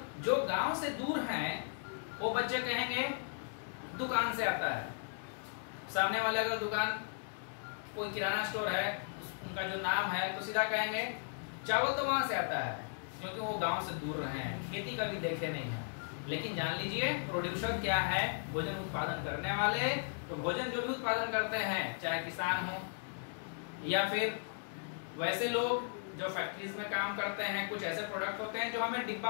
जो गांव से दूर हैं वो बच्चे कहेंगे दुकान से आता है। सामने वाले का दुकान कोई किराना स्टोर है, उनका जो नाम है, तो सीधा कहेंगे चावल तो वहां से आता है, क्योंकि वो गांव से दूर रहे हैं, खेती कभी देखे नहीं है। लेकिन जान लीजिए प्रोड्यूसर क्या है? भोजन उत्पादन करने वाले। तो भोजन जो भी उत्पादन करते हैं, चाहे किसान हो या फिर वैसे लोग जो फैक्ट्रीज में काम करते हैं, कुछ ऐसे प्रोडक्ट होते हैं जो हमें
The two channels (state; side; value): silent; right; digital silence